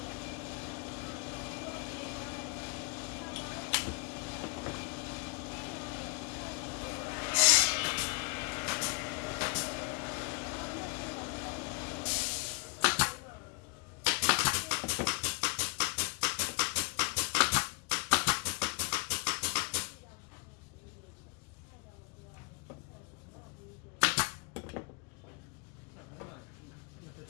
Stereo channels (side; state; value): right; quieter; 33.0 dB